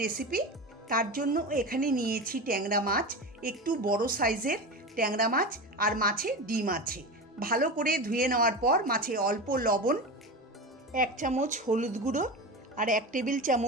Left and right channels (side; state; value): both; normal; correlation 0.25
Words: রেসিপি। তার জন্য এখানে নিয়েছি ট্যাংরা মাছ, একটু বড় সাইজের ট্যাংরা মাছ, আর মাছে ডিম আছে। ভালো করে ধুয়ে নেওয়ার পর মাছে অল্প লবণ, 1 চামচ হলুদ গুঁড়ো আর 1 টেবিল